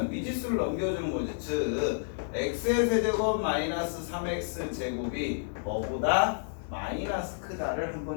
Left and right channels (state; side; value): silent; right; digital silence